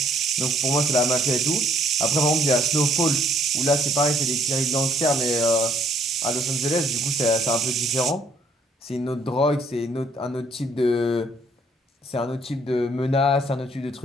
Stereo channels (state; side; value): normal; both; correlation 0.64